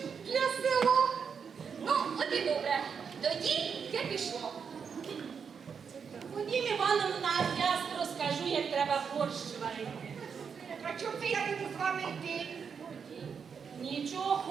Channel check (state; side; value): quieter; left; 6.5 dB